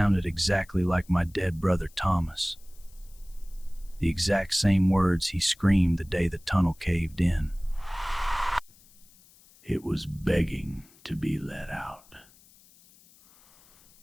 exactly like my dead brother Thomas. The exact same words he screamed the day the tunnel caved in. It was begging to be let out.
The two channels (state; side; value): noise; left; hiss, 27 dB below the sound